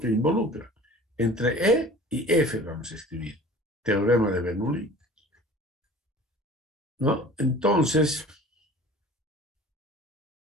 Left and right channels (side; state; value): both; normal; correlation 0.44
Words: involucra. Entre E y F vamos a escribir. Teorema de Bernoulli. ¿No? Entonces,